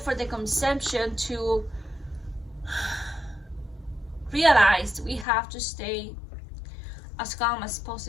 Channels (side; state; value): right; drops out; at 5.2 s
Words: the conception to realize, we have to stay as calm as